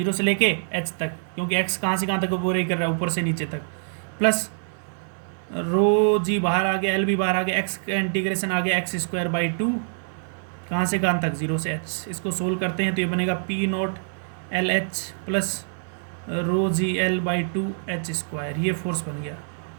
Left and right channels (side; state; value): left; silent; digital silence